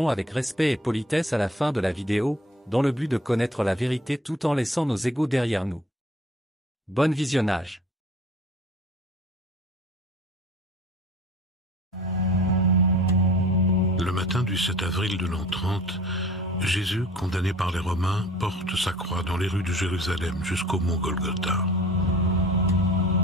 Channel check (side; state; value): both; normal; correlation 0.48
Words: avec respect et politesse à la fin de la vidéo, dans le but de connaître la vérité tout en laissant nos égos derrière nous. Bon visionnage. Le matin du 7 avril de l'an 30, Jésus, condamné par les Romains, porte sa croix dans les rues de Jérusalem jusqu'au mont Golgotha.